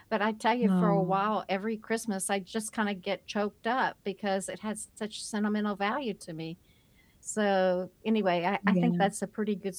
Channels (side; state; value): both; identical; correlation 1.00